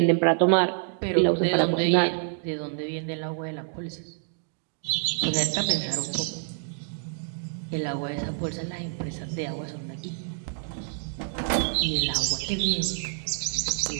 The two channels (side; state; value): left; silent; 60 dB below the other